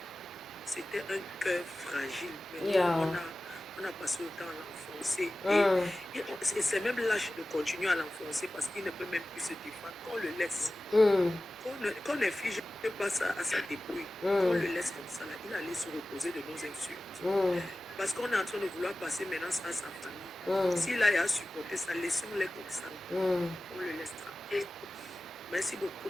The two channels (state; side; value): normal; both; correlation 0.96